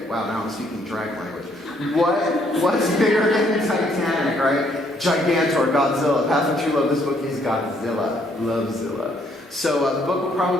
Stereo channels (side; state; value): both; normal; correlation 0.68